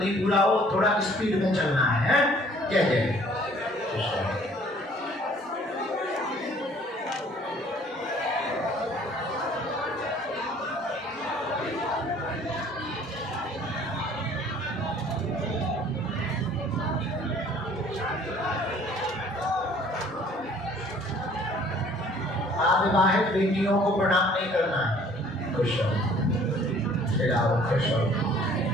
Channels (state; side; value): normal; both; correlation 0.55